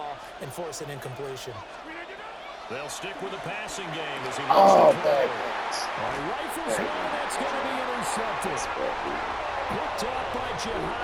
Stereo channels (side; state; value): both; identical; correlation 1.00